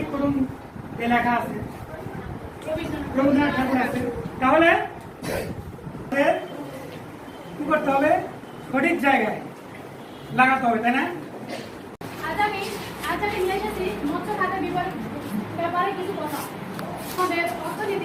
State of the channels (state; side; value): identical; both; correlation 1.00